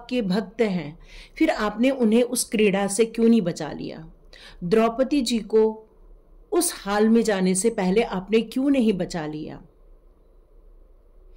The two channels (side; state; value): both; identical; correlation 1.00